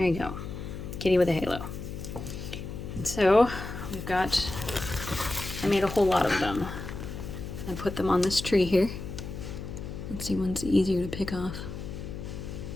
you go. Kitty with a halo. And so we've got, I made a whole lot of them. I put them on this tree here. Let's see, one's easier to pick off.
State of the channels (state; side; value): noise; left; hum, 8 dB below the sound